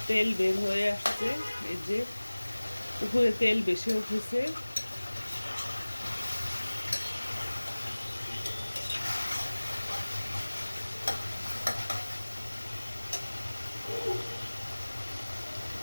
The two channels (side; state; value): both; inverted; correlation -1.00